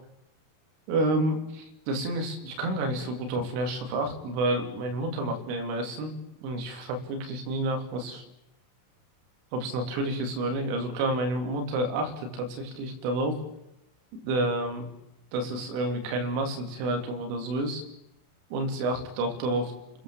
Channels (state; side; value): late; left; 32 ms